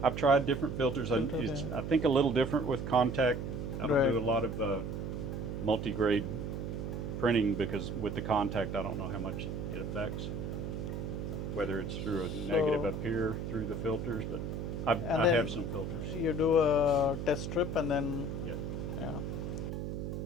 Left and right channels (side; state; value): right; noise; hum, 4 dB below the sound